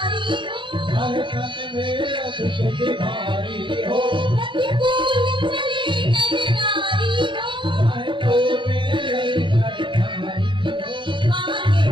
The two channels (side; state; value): left; late; 0.23 ms